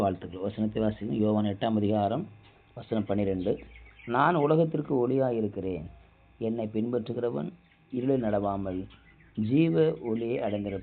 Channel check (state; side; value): identical; both; correlation 1.00